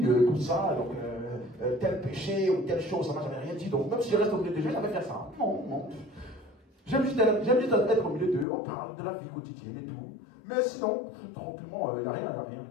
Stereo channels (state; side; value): drops out; right; at 8.5 s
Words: Tout ça, donc, tel péché ou telle chose, ça ne m'a jamais rien dit. Donc, même si je reste au milieu de Dieu, je vais faire ça. Non. J'aime juste être au milieu d'eux, on parle de la vie quotidienne et tout. Mais sinon, tranquillement, il n'y a rien.